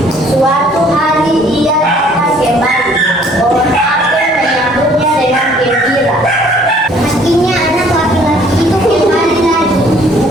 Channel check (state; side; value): normal; both; correlation 0.59